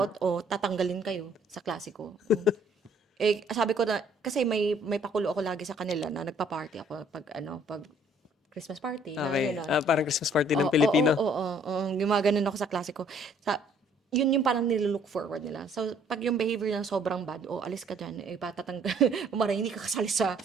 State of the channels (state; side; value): normal; both; correlation 0.61